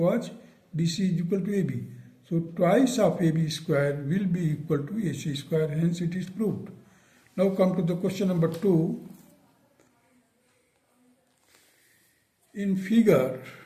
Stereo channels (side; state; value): both; identical; correlation 1.00